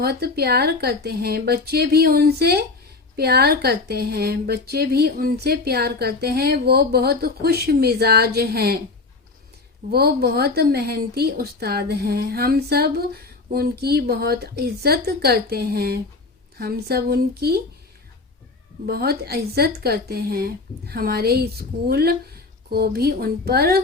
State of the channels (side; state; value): right; quieter; 3.8 dB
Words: प्यार करते हैं। बच्चे भी उनसे प्यार करते हैं। बच्चे भी उनसे प्यार करते हैं। वो बहुत खुश मिजाज हैं। वो बहुत मेहनती उस्ताद हैं। हम सब उनकी बहुत इज्जत करते हैं। हम सब उनकी बहुत इज्जत करते हैं। हमारे स्कूल को भी उन